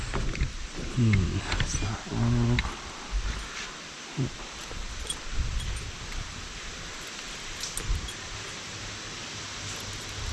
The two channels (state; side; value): identical; both; correlation 1.00